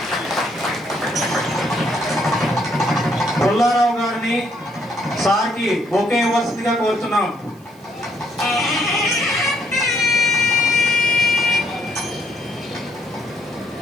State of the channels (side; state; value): right; noise; hiss, 29 dB below the sound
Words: పుల్లారావు గారిని సార్కి బొకే ఇవ్వాల్సిందిగా కోరుతున్నాం.